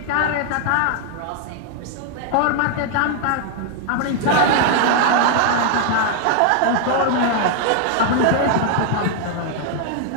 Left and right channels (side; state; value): both; different; correlation 0.00